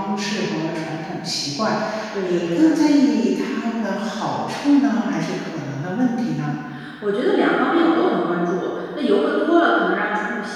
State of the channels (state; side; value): identical; both; correlation 1.00